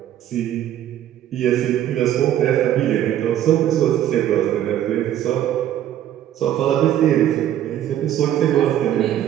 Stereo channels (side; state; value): left; quieter; 11.6 dB